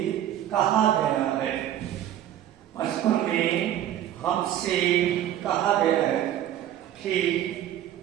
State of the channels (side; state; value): left; quieter; 11.6 dB